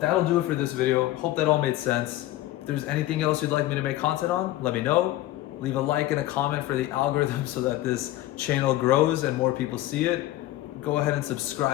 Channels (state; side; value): quieter; right; 15.6 dB